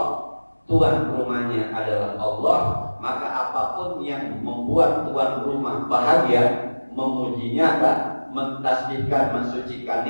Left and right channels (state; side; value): inverted; both; correlation -1.00